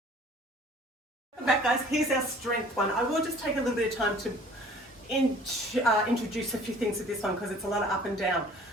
Welcome back, guys. Here's our strength one. I will just take a little bit of time to introduce a few things with this one because it's a lot of up and down.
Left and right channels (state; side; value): normal; both; correlation 0.51